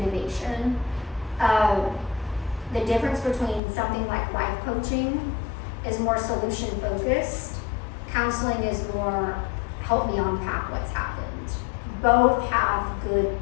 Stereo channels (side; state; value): right; drops out; at 3.6 s